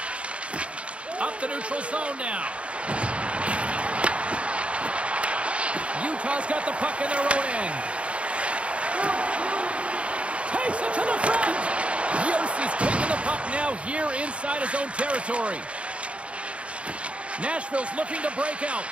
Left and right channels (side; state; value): left; late; 0.061 ms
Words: Up the neutral zone now. Utah's got the puck in their own end. Takes it to the front. Yossi's taking the puck now here inside his own territory. Nashville's looking to break out.